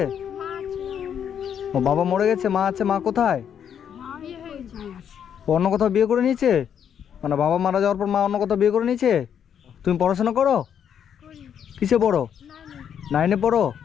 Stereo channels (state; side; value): quieter; right; 8.5 dB